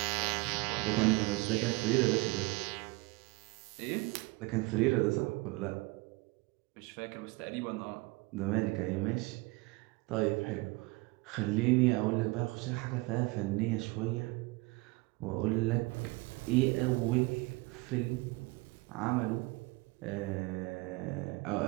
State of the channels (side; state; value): left; quieter; 24.3 dB